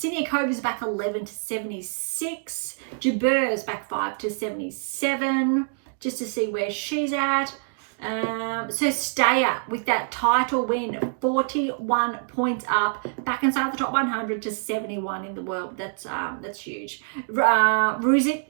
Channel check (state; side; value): silent; left; digital silence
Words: is back 11 to 76. Jabeur is back 5 to 77, just to see where she's at. So Steyer with that title win, 41 points up, back inside the top 100 to 71 in the world. That's huge. Ruzic